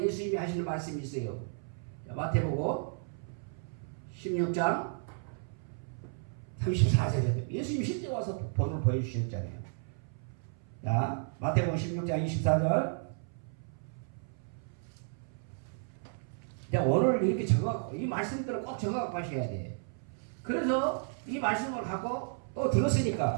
예수님이 하시는 말씀이 있어요. 마태복음 16장 34절에 예수님이 실제 와서 본을 보여주셨잖아요. 자, 마태복음 16장 24절. 오늘 이렇게 적어, 이 말씀들을 꼭 적어갖고 하셔야 돼. 그래서 이 말씀을 갖고 또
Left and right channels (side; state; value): left; silent; 56 dB below the other